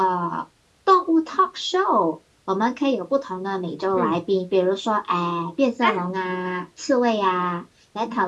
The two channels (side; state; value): both; identical; correlation 1.00